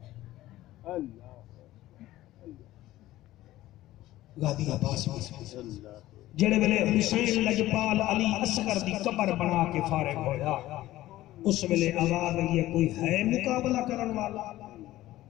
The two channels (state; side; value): quieter; right; 15.6 dB